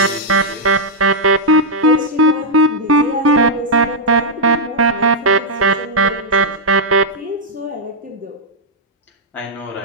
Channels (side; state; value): both; normal; correlation -0.06